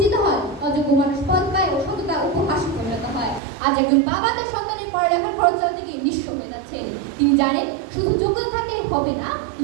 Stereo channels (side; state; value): left; drops out; at 3.4 s